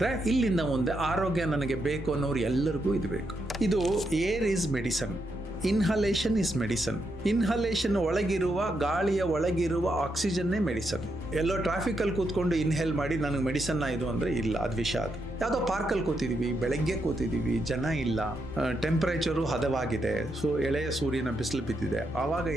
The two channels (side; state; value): both; normal; correlation 0.81